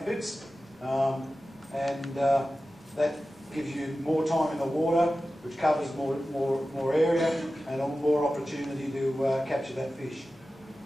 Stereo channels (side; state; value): both; normal; correlation 0.94